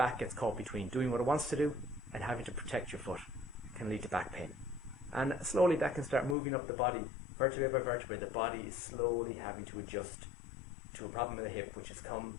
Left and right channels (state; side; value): drops out; right; at 6.4 s